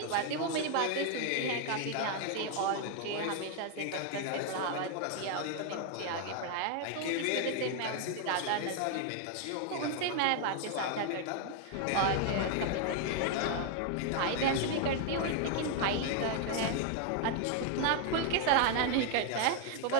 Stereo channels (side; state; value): both; different; correlation 0.00